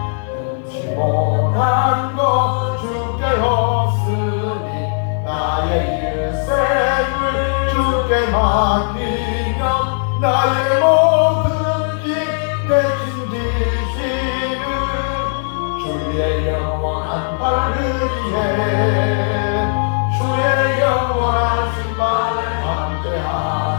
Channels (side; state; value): right; silent; 57 dB below the other